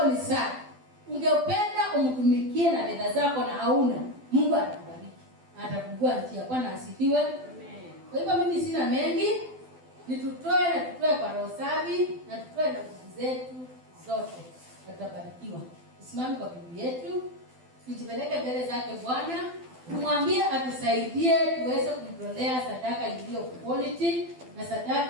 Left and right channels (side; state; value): left; late; 12 ms